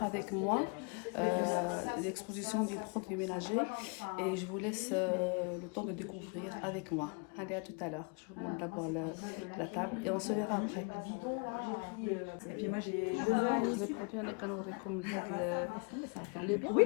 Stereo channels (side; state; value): right; quieter; 34.7 dB